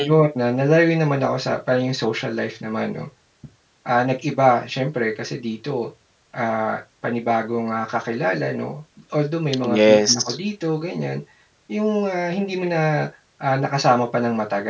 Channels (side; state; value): both; identical; correlation 1.00